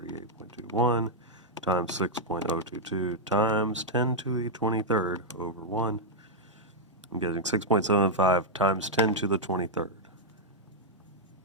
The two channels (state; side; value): normal; both; correlation -0.03